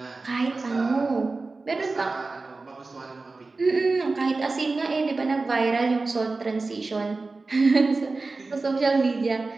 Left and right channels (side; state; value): left; quieter; 3.7 dB